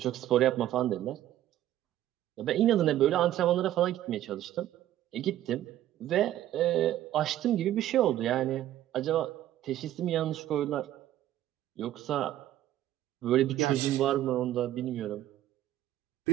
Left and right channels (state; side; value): quieter; left; 13.0 dB